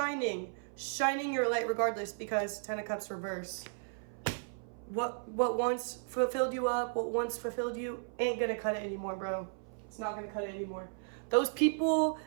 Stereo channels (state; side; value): silent; left; 55 dB below the other